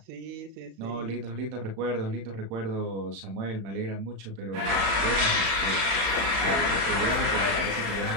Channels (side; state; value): left; late; 35 ms